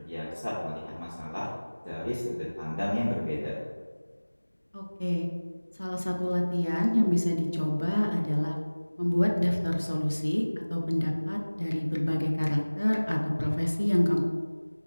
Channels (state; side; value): inverted; both; correlation -1.00